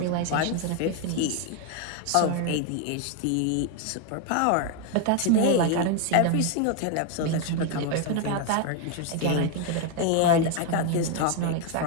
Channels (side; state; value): both; different; correlation 0.01